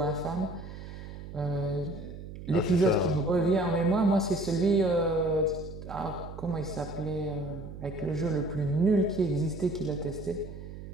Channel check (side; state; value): right; noise; hum, 12 dB below the sound